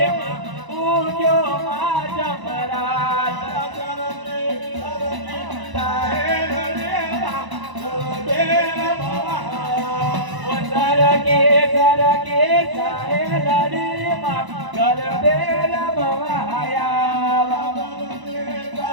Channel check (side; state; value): left; late; 1.0 ms